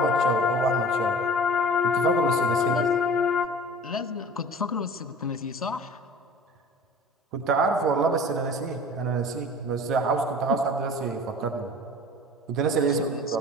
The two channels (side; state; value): both; normal; correlation 0.42